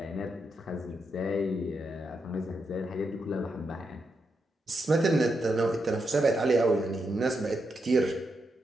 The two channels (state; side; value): normal; both; correlation 0.83